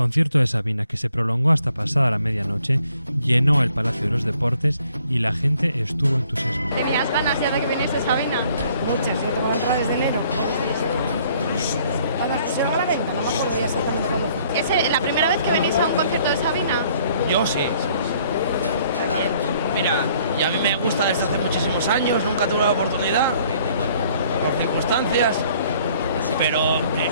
de Sabina, que se prolongó hasta pasada la medianoche, llenó el Palacio de los Deportes y la gente estuvo entusiasmada. ¿Tenías ganas ya de que viniese Sabina? Muchas, yo tengo la entrada desde enero. Cuando se va a la venta, no me acuerdo ya exactamente cuándo. ¿Es la primera vez que venís a un concierto de Sabina? Yo sí. Mira, y a mí me gusta desde hace muchísimos años, nunca tuve la oportunidad, por circunstancias, pero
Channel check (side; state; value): both; inverted; correlation -0.62